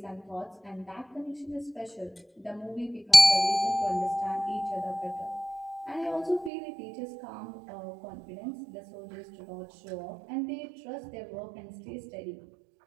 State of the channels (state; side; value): drops out; left; at 6.5 s